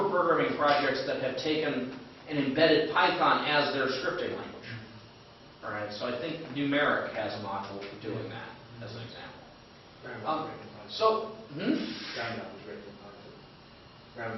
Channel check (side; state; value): both; identical; correlation 1.00